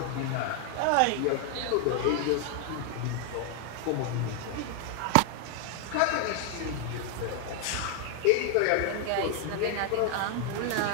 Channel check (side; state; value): both; different; correlation 0.00